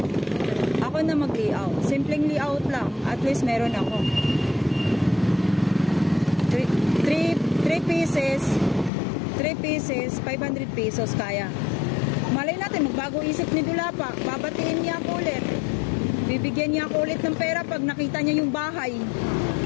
Ako na mag-layout. Simpleng layout lang. At least meron ako. 3 pieces, 500 pesos kaya. Malay natin, magbago isip ni Dulapa. Babatiin niya ako ulit. Bibigyan niya ako ulit ng pera pag nakita niya yung bahay.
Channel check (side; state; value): right; drops out; at 8.9 s